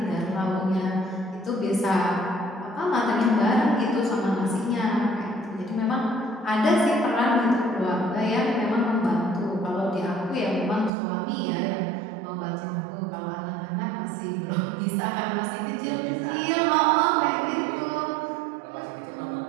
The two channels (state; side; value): drops out; left; at 10.9 s